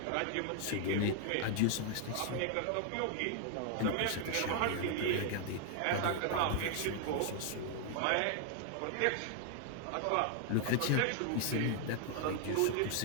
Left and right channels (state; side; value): different; both; correlation 0.00